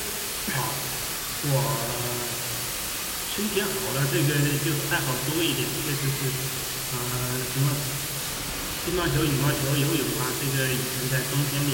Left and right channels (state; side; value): identical; both; correlation 1.00